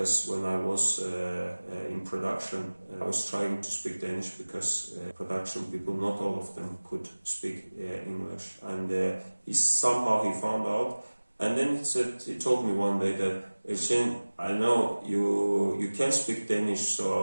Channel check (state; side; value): inverted; both; correlation -1.00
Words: when I was in production, I was trying to speak Danish, because production people, not all of them could speak English, and he found out. And then he told me one day that, Elchin, I know you can speak Danish,